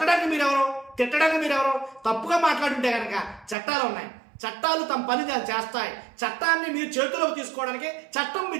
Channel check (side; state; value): left; drops out; at 3.6 s